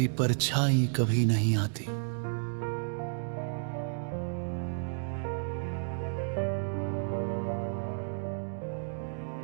परछाई कभी नहीं आती।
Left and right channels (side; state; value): left; silent; digital silence